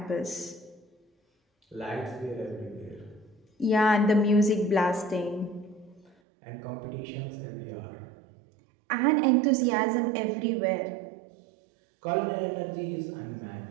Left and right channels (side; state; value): left; drops out; at 6.2 s